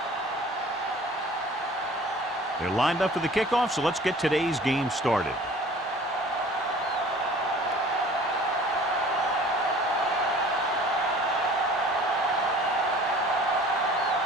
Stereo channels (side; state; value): both; normal; correlation 0.47